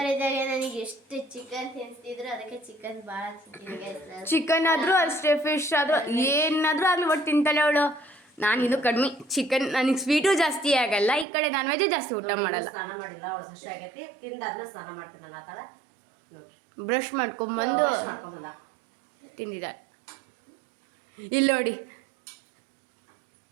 ನನಗೆ ಎಷ್ಟು ಚಿಕನ್ ತಿನ್ನಿಸ್ತಿದ್ರು, ಅದಕ್ಕೆ ಚಿಕನ್ ಭಾಳ ತಿಂತೀನಿ. ಚಿಕನ್ ಆದ್ರೂ ಅಷ್ಟೇ, ಫಿಶ್ ಆದ್ರೂ ಏನಾದ್ರೂ ಆಗ್ಲಿ ಒಟ್ಟು ತಿಂತಾಳೆ ಅವಳು. ನಾನು ಇದು ಕಡಿಮೆ ಚಿಕನ್, ನನಗೆ ಸ್ವೀಟು ಜಾಸ್ತಿ ಆಗಲ್ಲ, ಈ ಕಡೆ ನಾನ್ ವೆಜ್ ಜಾಸ್ತಿ ಊಟ ಮಾಡಲ್ಲ. ಸ್ನಾನ ಮಾಡಿಲ್ಲ ಅವಳು, ಹಸಿ ಆಗೈತಿ, ತಿಂದಾದ್ಮೇಲೆ ಸ್ನಾನ ಮಾಡ್ತೀನಿ ನಾನು. ಆತಾಳ ನೋಡ್ರಿ, ಬ್ರಷ್ ಮಾಡ್ಕೊಂಬಂದು ತಿಂದಿದ್ದಾಳೆ. ಇಲ್ಲಿ ನೋಡಿ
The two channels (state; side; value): drops out; left; at 11.2 s